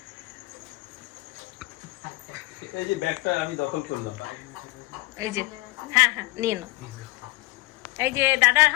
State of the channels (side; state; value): right; quieter; 21.5 dB